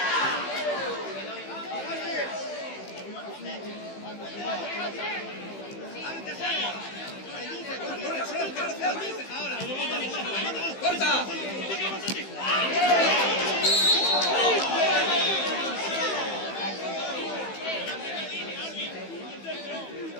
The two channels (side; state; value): right; late; 15 ms